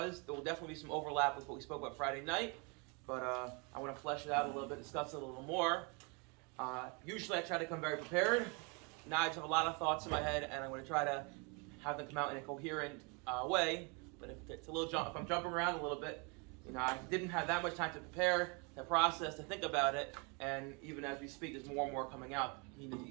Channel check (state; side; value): quieter; left; 32.2 dB